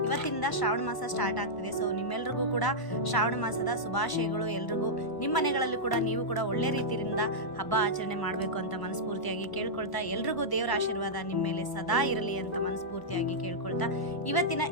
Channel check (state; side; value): late; right; 1.1 ms